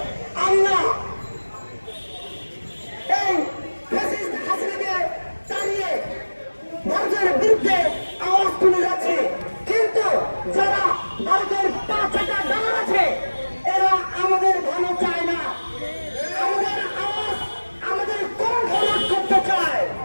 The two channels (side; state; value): both; inverted; correlation -1.00